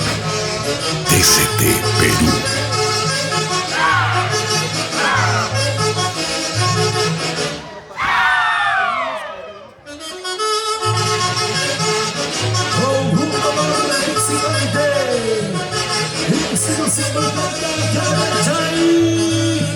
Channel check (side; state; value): both; identical; correlation 1.00